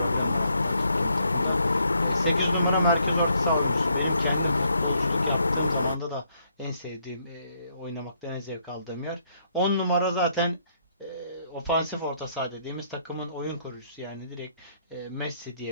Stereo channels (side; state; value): both; inverted; correlation -0.71